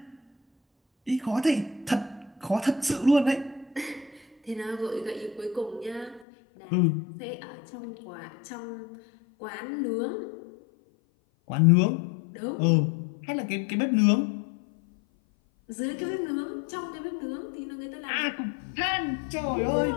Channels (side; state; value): right; drops out; at 6.2 s